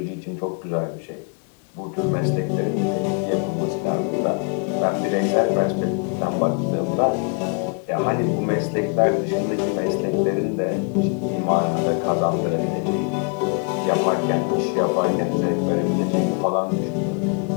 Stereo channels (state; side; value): quieter; right; 38.0 dB